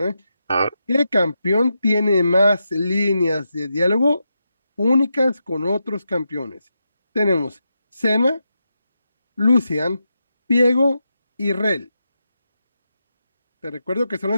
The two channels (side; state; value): both; inverted; correlation -0.87